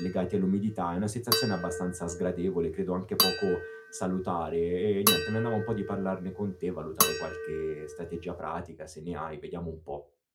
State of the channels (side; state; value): both; identical; correlation 1.00